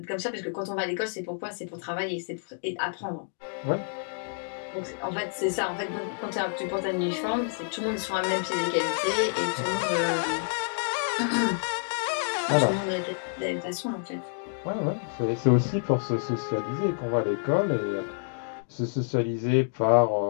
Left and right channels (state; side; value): silent; right; digital silence